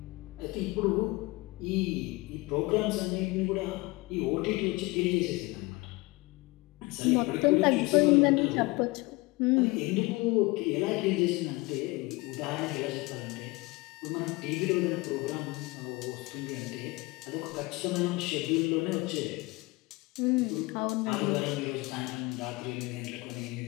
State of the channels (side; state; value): right; quieter; 23.2 dB